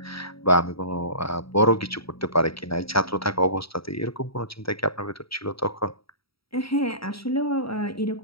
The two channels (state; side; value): late; right; 0.75 ms